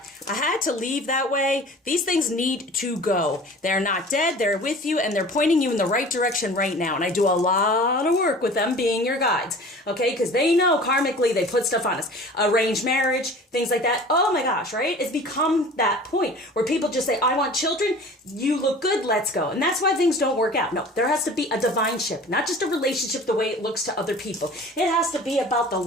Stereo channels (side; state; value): both; normal; correlation 0.43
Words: I had to leave that way. These things need to go. They're not dead. They're with you and they're pointing you in the right direction right now. And I do a lot of work with them being your guides. Okay, because they know karmically they put stuff on us. Arranged marriage, things like that. Oh my gosh, right? It's become that point where people just say, I want children. You look good. Let's go. And that's why things don't work out. No, there has to be a divine ship, not just a relationship the way it looks to other people. It has to be about the